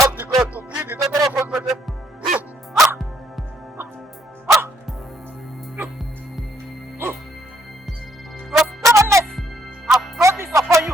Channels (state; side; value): normal; both; correlation 0.70